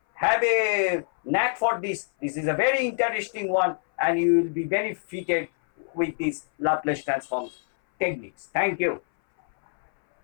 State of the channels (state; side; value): silent; right; 58 dB below the other